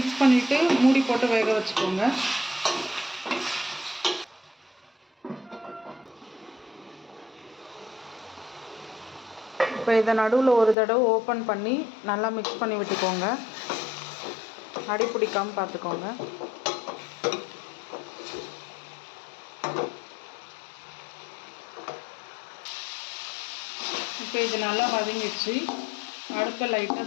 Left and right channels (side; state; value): right; drops out; at 10.8 s